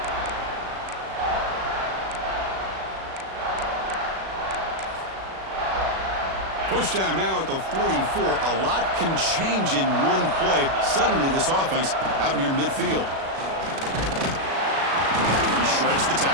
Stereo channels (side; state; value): left; late; 37 ms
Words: Push down now at the 44. A lot can change in one play. Suddenly this offense out near midfield. He shreds the